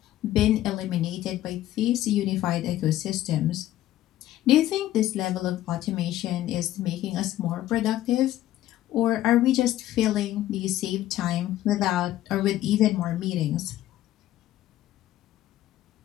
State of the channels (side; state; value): right; quieter; 13.8 dB